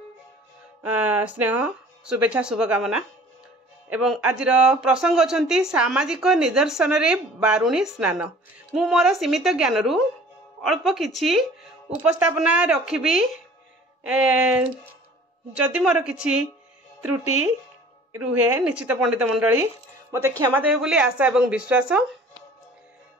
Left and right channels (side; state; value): both; normal; correlation 0.48